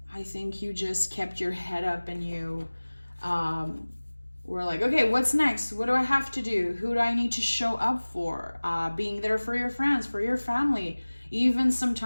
I think you just kept your head up and you were like, okay, what's next? What do I have to do? Who do I need to show up for? Being there for your friends, for your family, even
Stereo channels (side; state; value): both; inverted; correlation -1.00